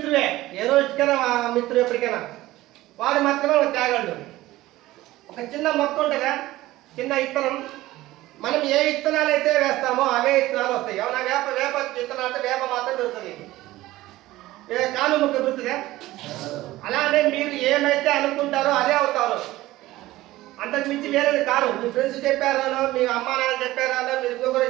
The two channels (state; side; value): quieter; left; 17.0 dB